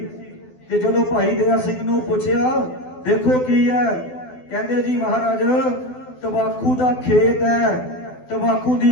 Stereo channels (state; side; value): late; right; 12 ms